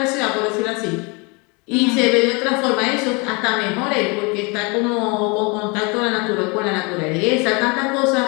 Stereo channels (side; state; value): right; quieter; 29.9 dB